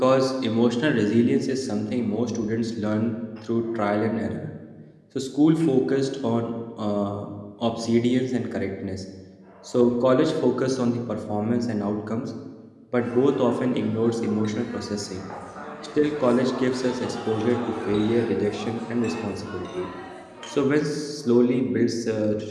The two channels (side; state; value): both; identical; correlation 1.00